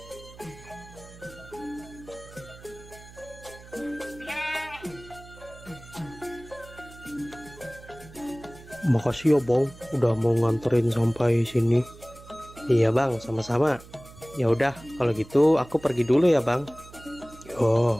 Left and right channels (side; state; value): right; noise; hum, 19 dB below the sound